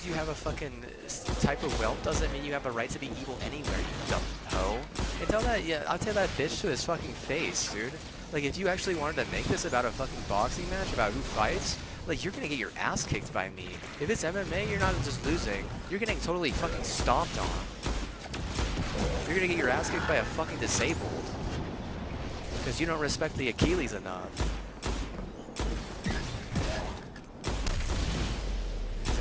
you have a fucking type of wealth doesn't mean you have a right to be evil anywhere. You dumb hoe. And tell that, yeah, I'll tell that bitch to his fucking face, dude. Like, if you actually wanted to make this about a fucking boxing match, about who fights, like, you're gonna get your ass kicked by me. If it's MMA, you're not just losing. You're getting totally fucking stomped on. You're gonna get your ass kicked by a fucking disabled. Because you don't respect the Achilles enough. You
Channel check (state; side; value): identical; both; correlation 1.00